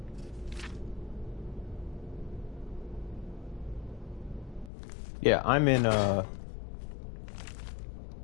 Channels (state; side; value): drops out; right; at 4.7 s